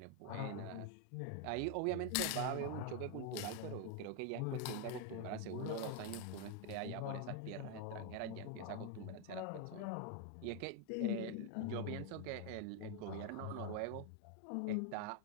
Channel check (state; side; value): different; both; correlation 0.01